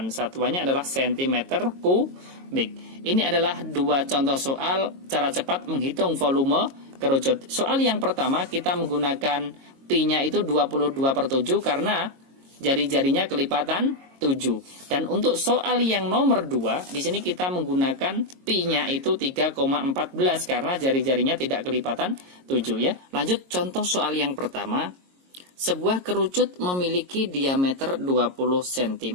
Satuannya adalah cm kubik. Ini adalah dua contoh soal cara cepat menghitung volume kerucut. Soal yang pertama kita menggunakan pi-nya itu 22/7 karena jari-jarinya kelipatan 7. Dan untuk soal yang nomor 2, di sini kita menggunakan pi-nya itu 3,14 karena jari-jarinya tidak kelipatan 7 ya. Lanjut contoh soal yang pertama. Sebuah kerucut memiliki diameter 20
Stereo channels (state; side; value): late; left; 22 ms